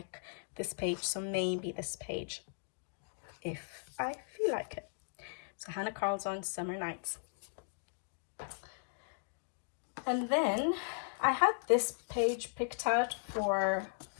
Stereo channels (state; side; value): silent; right; digital silence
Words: this page. So maybe this page, if I feel like it. So Hannah Carlson's Summer Nights. And then I had this page picked out for